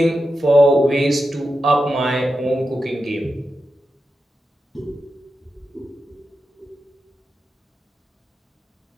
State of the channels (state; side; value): normal; both; correlation 0.89